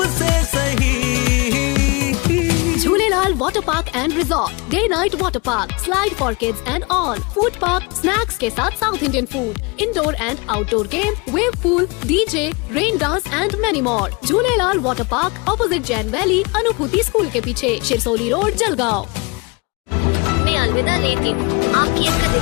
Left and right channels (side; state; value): right; quieter; 28.4 dB